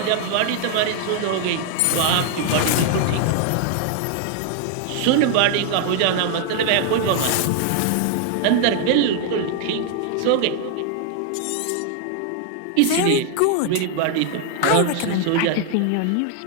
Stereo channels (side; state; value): both; different; correlation 0.00